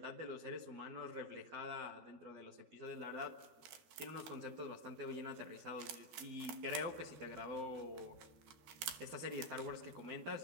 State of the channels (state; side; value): late; left; 13 ms